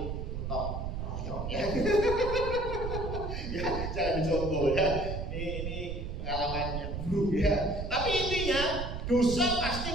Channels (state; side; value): noise; right; rumble, 5 dB below the sound